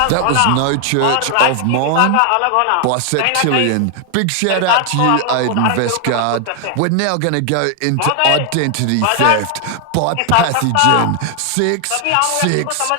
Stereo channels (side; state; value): both; different; correlation 0.00